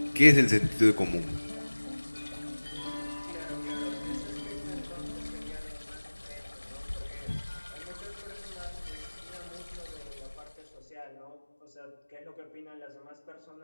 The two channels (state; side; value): inverted; both; correlation -1.00